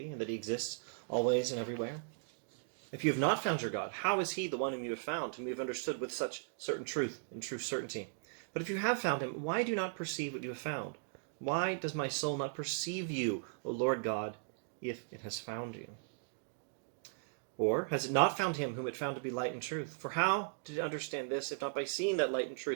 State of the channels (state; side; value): silent; left; digital silence